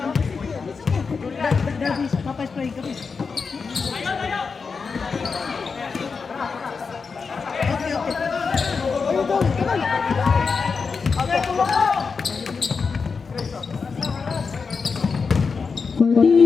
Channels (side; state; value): right; quieter; 5.1 dB